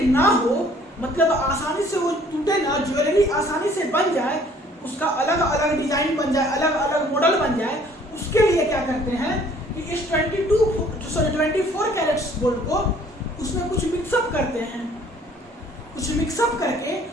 ना हो, मतलब आसानी से वो टूटे ना, ज्वेलरी आसानी से बन जाए, उसका अलग अलग डिजाइन बन जाए, अलग अलग मॉडल बन जाए, उसके लिए क्या करते हैं कि इस 24 कैरेट्स गोल्ड को उसमें कुछ मिक्सअप करते हैं, कुछ मिक्सअप करके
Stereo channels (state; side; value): normal; both; correlation 0.57